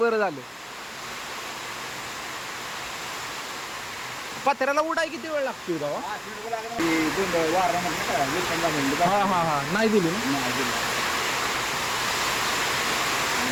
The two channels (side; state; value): both; identical; correlation 1.00